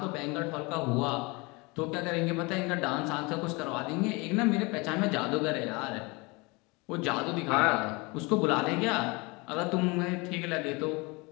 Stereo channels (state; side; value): quieter; right; 26.7 dB